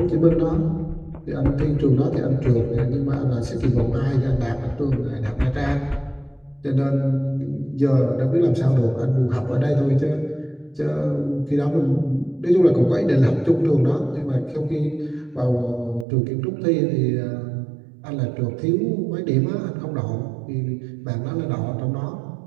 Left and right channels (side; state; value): left; drops out; at 16.1 s